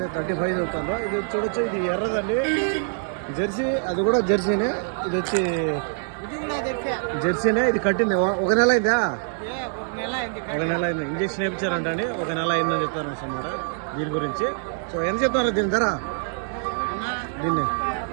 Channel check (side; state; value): left; silent; digital silence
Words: 35 చెప్తాను. ఇది చూడొచ్చు, ఇది ఎర్రదండి జెర్సీ. అది కూడా జెర్సీనే. ఇది వచ్చి జెర్సీనే. ఇది కట్టింది ఒక నెల అయిందా? ఒక నెల అయింది. ఇంజక్షన్ వేయించారంట అండి. ఒక నెల అయిందని చెప్తారు అన్నమాట దీని గురించి. సో ఎంత చెప్తారు దీని ధర? దీన్ని